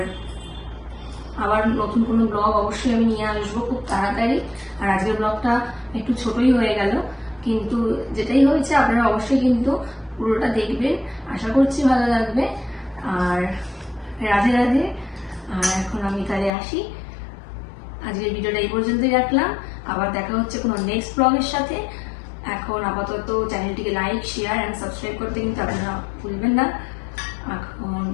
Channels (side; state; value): right; drops out; at 16.5 s